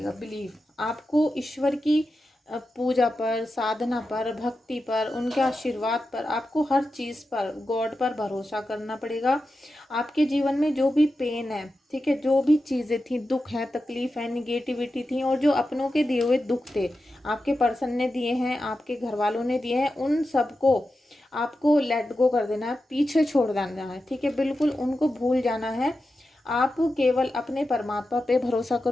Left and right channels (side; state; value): both; normal; correlation 0.91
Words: बिलीव। आपको ईश्वर की पूजा पर, साधना पर, भक्ति पर, उनके आशीर्वाद पर, आपको हर चीज़ पर, गॉड पर भरोसा करना पड़ेगा। आपके जीवन में जो भी पेन है, ठीक है, जो भी चीज़ें थी, दुख है, तकलीफ है, निगेटिविटी थी, और जो अपनों के दिए हुए दुख थे, आपके पर्सन ने दिए हैं, आपके घर वालों ने दिए हैं, उन सबको आपको लेट गो कर देना है, पीछे छोड़ देना है, ठीक है। बिल्कुल उनको भूल जाना है। आप केवल अपने परमात्मा पे भरोसा